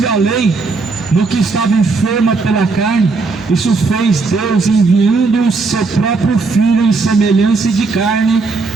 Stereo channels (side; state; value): left; quieter; 4.1 dB